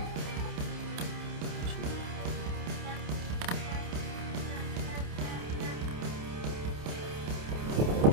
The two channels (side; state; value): left; late; 28 ms